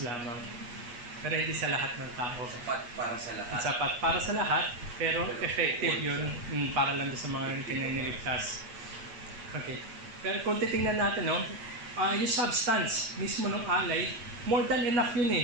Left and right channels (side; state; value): left; late; 8.3 ms